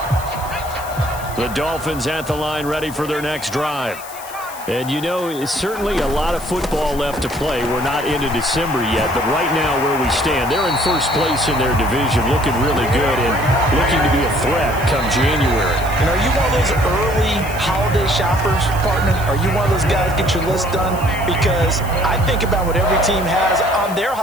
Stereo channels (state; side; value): noise; left; hiss, 16 dB below the sound